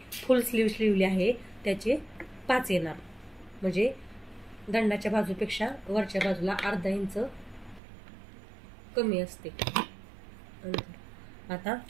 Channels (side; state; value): left; drops out; at 7.8 s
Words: फुल स्लीव शिवली आहे, त्याचे 5 येणार, म्हणजे दंडाच्या बाजूपेक्षा वरच्या बाजूला अर्धा इंच कमी असते. आता